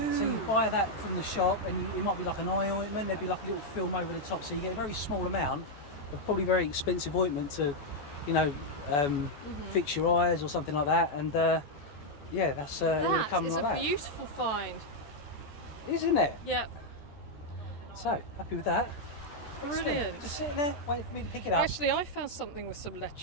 you buy that from the shop, and it might be like an eye ointment. There'd be like a little film over the top, so you get a very small amount of probably very expensive ointment to, you know, fix your eyes or something like that. And yeah, that's that is like a beautiful find, isn't it? Yep. So happy with that. Brilliant. Just sitting there waiting for me to pick it up. Actually, I found something with some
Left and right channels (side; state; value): right; late; 14 ms